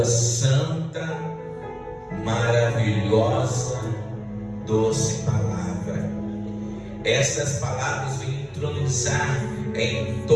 santa, maravilhosa, doce palavra. Essas palavras vêm entronizar em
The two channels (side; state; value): both; identical; correlation 1.00